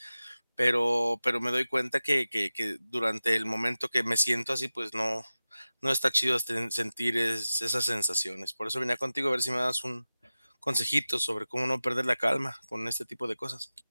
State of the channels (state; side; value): inverted; both; correlation -0.96